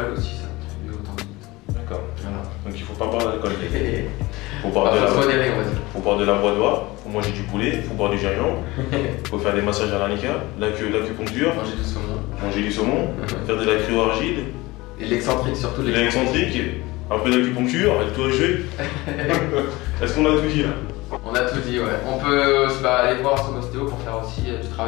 aussi, ça contribue au tendinite. D'accord. Voilà. Donc il faut pas boire d'alcool. Faut boire de la badoie, faut manger du poulet, faut boire du gingembre, faut faire des massages à l'arnica, l'acupuncture, manger du saumon, faire de la cryo-argile. Et l'excentrique surtout. L'excentrique, un peu d'acupuncture, et tout jeu. Est-ce qu'on a tout dit là? On a tout dit, ouais. On peut aller voir son ostéo pour faire aussi du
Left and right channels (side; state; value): right; quieter; 21.2 dB